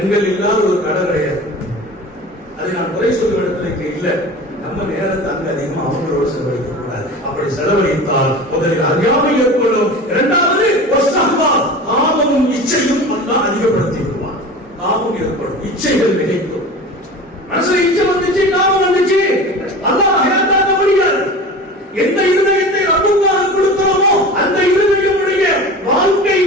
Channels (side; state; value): both; normal; correlation 0.35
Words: இல்லாத ஒரு கடை கிடையாது. அதை நான் குறை சொல்லும் இடத்துல இல்ல. நம்ம நேரத்தை அங்க அதிகமா அவங்களோட செலவழிக்க கூடாது. அப்படி செலவழித்தால் முதலில் அறியாமை ஏற்படும். இரண்டாவது காமமும் இச்சையும் அதிகப்படுத்தி விடுவான். காமம் ஏற்படும், இச்சைகள் நினைக்கும். மனசுல இச்சை வந்துச்சு, காமம் வந்துச்சு, அல்லாஹ் ஹயாத்தாக்க முடியாது. எந்த இருதயத்தை ரப்புக்காக கொடுக்கிறோமோ அந்த இருதயமுடைய வாழ்க்கை